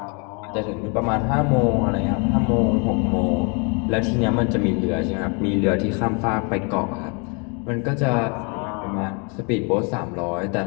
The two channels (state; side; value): quieter; right; 34.3 dB